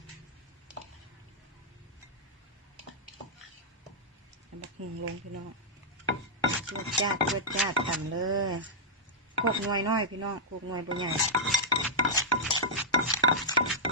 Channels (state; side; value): normal; both; correlation -0.07